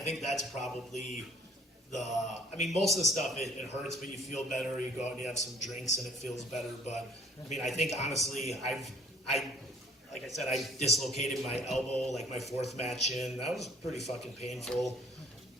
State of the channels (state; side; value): normal; both; correlation 0.55